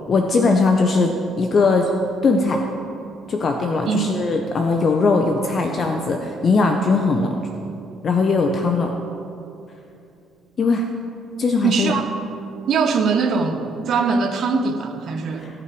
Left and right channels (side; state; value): both; normal; correlation 0.71